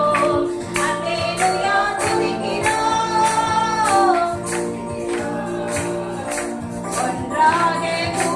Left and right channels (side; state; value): both; identical; correlation 1.00